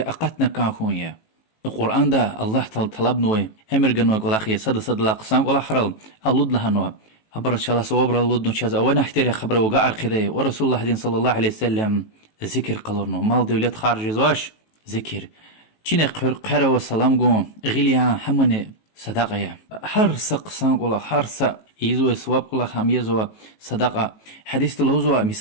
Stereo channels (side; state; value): right; late; 18 ms